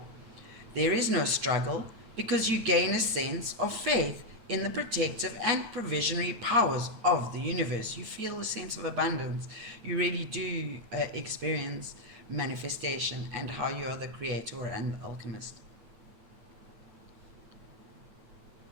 There is no struggle because you gain a sense of faith in the protective and provisionary powers of the universe. You feel a sense of abundance. You really do experience manifestation and how you are the creator and the alchemist.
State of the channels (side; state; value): left; late; 9.0 ms